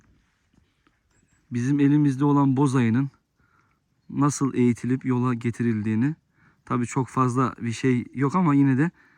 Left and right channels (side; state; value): both; identical; correlation 1.00